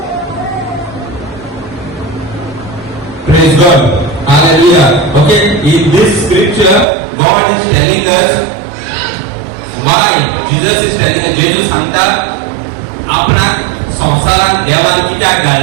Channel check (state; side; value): drops out; left; at 6.9 s